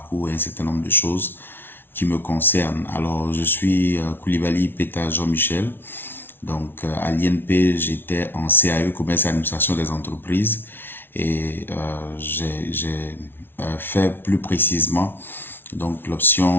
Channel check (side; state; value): right; late; 0.10 ms